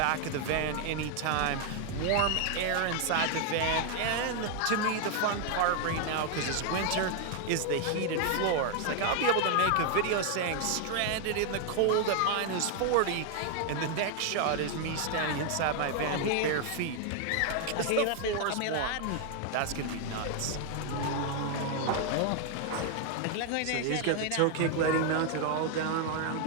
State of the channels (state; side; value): different; both; correlation 0.00